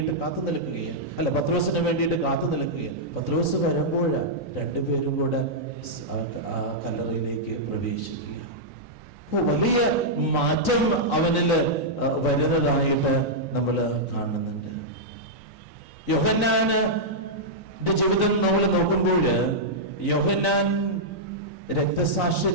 കാത്തു നിൽക്കുകയാണ്, അല്ല പത്രോസിന് വേണ്ടിയിട്ട് കാത്തു നിൽക്കുകയാണ്. പത്രോസ് വരുമ്പോഴാണ് രണ്ടുപേരും കൂടെ ആ കല്ലറയിലേക്ക് പ്രവേശിക്കുക. വലിയ മാറ്റം അവനില് വരുന്നതായിട്ട് നമ്മൾ കാണുന്നുണ്ട്. യോഹന്നാന്റെ ജീവിതം നമ്മൾ നോക്കുമ്പോൾ യോഹന്നാൻ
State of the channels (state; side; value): late; right; 3.9 ms